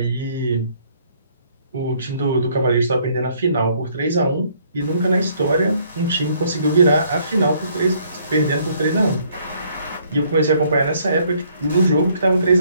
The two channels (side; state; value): both; inverted; correlation -0.65